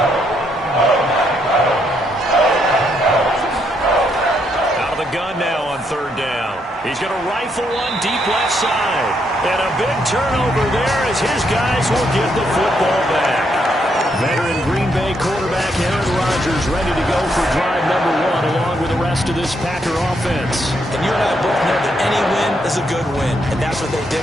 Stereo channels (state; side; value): normal; both; correlation 0.75